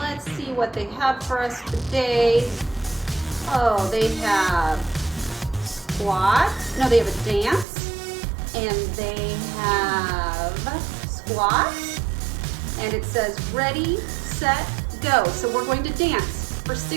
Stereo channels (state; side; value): drops out; left; at 7.7 s